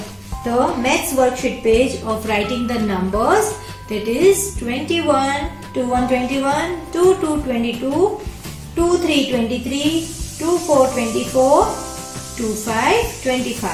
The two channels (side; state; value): both; identical; correlation 1.00